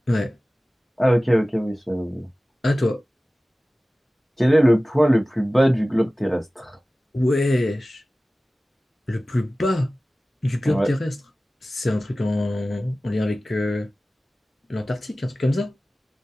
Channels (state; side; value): normal; both; correlation 0.97